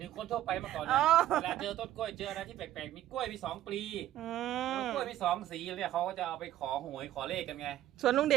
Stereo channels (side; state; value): left; quieter; 13.1 dB